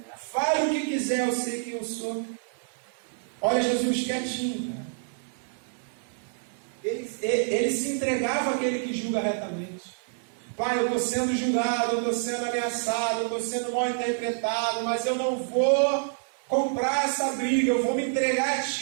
Fale o que quiser, eu sei quem eu sou. Olha Jesus quietinho. Ele se entregava àquele que julga retamente. Pai, eu estou sendo julgado, eu estou sendo ameaçado, eu estou sendo mal interpretado, mas eu não vou comprar essa briga, eu vou me entregar a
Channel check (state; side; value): silent; left; 57 dB below the other